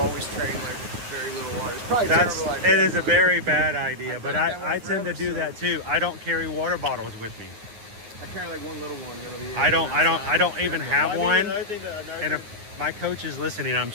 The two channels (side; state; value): left; late; 9.7 ms